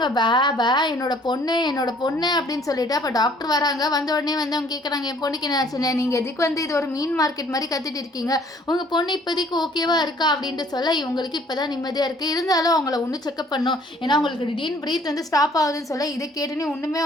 பே என்னோட பொண்ணு அப்படின்னு சொல்லிட்டு. அப்போ டாக்டர் வராங்க. வந்த உடனே வந்து அவங்க கேட்குறாங்க, என் பொண்ணுக்கு என்ன ஆச்சுன்னு. நீங்கள் எதுக்கு வந்து இது ஒரு மீன் மார்க்கெட் மாதிரி கத்திட்டு இருக்கீங்க, உங்கள் பொண்ணு இப்போதைக்கு ஓகேவா இருக்கா அப்படின்ட்டு சொல்ல இவங்களுக்கு இப்போ தான் நிம்மதியாக இருக்குது. இருந்தாலும் அவங்கள ஒன்று செக்அப் பண்ணும், ஏன்னா அவங்களுக்கு திடீர்னு பிரீத் வந்து ஸ்டாப் ஆகுதுன்னு சொல்ல இதை கேட்டுன்னு ஒன்றுமே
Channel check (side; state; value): both; normal; correlation 0.58